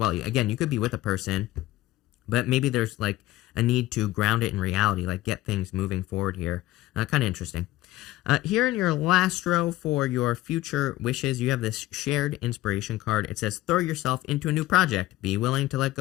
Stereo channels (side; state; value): right; quieter; 16.3 dB